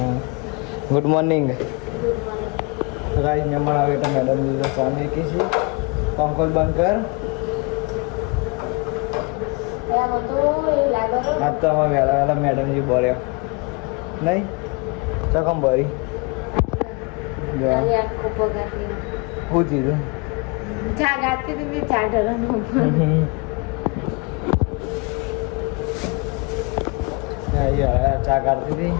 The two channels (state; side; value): quieter; right; 30.5 dB